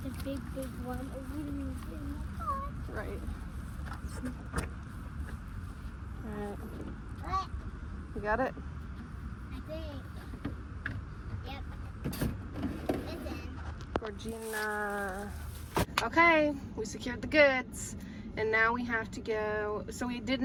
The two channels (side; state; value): both; identical; correlation 1.00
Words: the big one. Or we can fit in the car. Right. Alright. What? You got it? I think. Yep. It's in. Georgina. Okay, we secured the goods. And now we have to go. So we